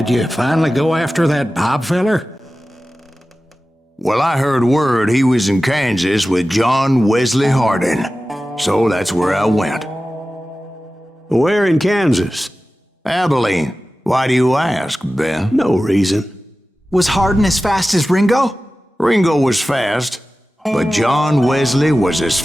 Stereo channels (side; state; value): both; normal; correlation 0.95